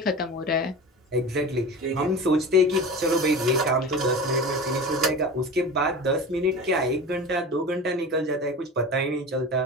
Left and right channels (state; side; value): normal; both; correlation 0.32